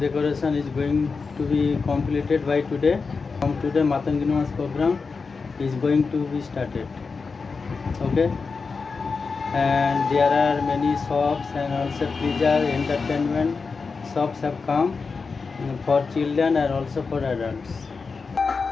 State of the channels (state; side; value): quieter; right; 4.7 dB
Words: is going to be completed by today. From today, Matangiri Monj program is going to be started. Okay, and there are many shops and also pleasure entertainment shops have come for children and also for adults.